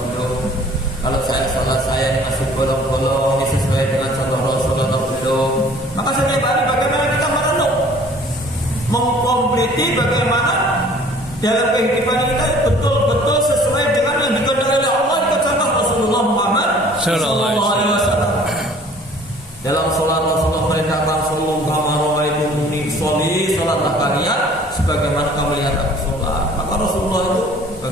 belum? Kalau saya salat saya ini masih bolong-bolong, ini sesuai dengan contoh Rasulullah atau belum? Maka setiap hari bagaimana kita merenung, mengkompleti bagaimana dalam kehidupan kita betul-betul sesuai dengan yang dikehendaki oleh Allah, ikut contoh Rasulullah Muhammad Sallallahu Alaihi Wasallam. Dalam sholat Rasulullah merintahkan sallallahu alaihi wasallam, sholatlah kalian sebagaimana kamu lihat aku sholat. Maka Rasulullah itu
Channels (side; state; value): both; normal; correlation 0.52